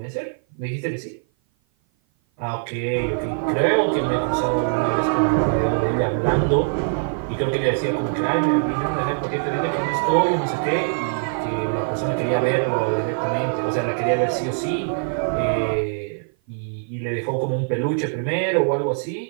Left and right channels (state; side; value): silent; left; 56 dB below the other